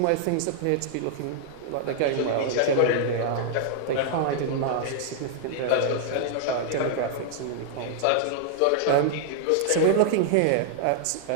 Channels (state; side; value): different; both; correlation -0.01